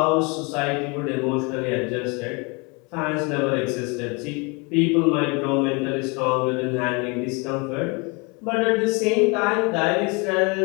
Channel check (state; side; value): quieter; right; 29.7 dB